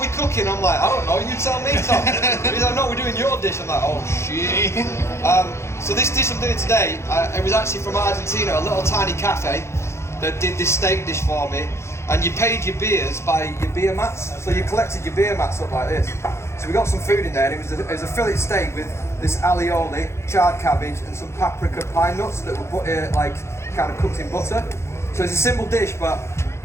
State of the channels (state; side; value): late; right; 0.13 ms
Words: cooking? I'm like, I don't know, you tell me, Tom. He's like, no, we're doing your dish. I'm like, oh shit. So this dish I'm doing today, it was actually from Argentina, a little tiny cafe that did this steak dish for me. And you paid your beers by your beer mats. So you collected your beer mats up like this. So we got some food in there, and it was a fillet steak with this alioli, charred cabbage, and some paprika pine nuts that were like kind of cooked in butter. So it's a simple dish, but